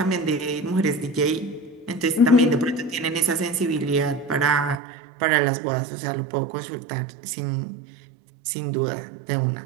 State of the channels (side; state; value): left; drops out; at 4.8 s